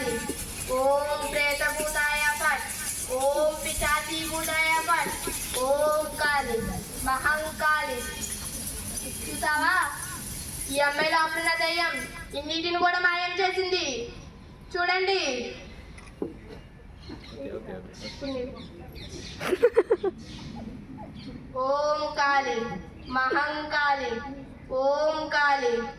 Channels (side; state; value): both; identical; correlation 1.00